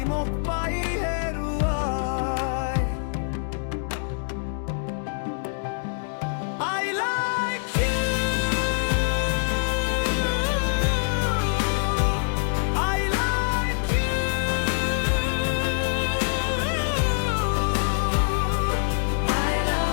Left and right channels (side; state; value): right; silent; digital silence